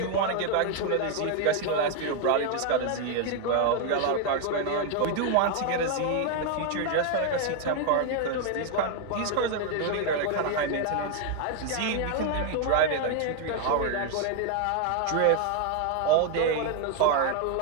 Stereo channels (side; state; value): both; different; correlation 0.01